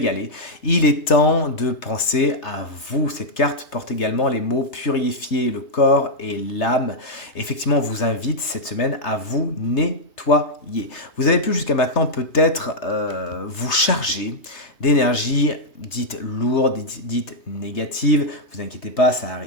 Il est temps de penser à vous. Cette carte porte également les mots purifier le corps et l'âme. Effectivement, on vous invite cette semaine à vous nettoyer. Vous avez pu jusqu'à maintenant peut-être vous charger d'énergie dite lourde, dite négative. Vous inquiétez pas, ça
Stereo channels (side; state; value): right; late; 3.3 ms